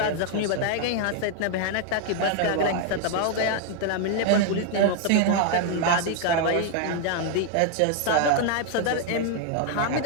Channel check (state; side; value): different; both; correlation 0.00